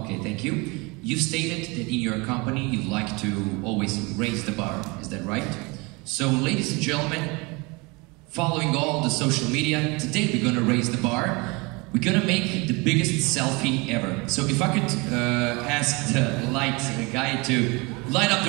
thank you. You've stated that in your company you like to always raise the bar, is that right? So, ladies and gentlemen, following all the social media, today we're going to raise the bar. We're going to make the biggest selfie ever. So if I could ask the light guy to light up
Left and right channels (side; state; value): left; quieter; 26.8 dB